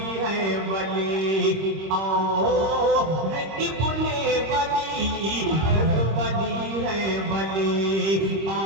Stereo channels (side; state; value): left; late; 26 ms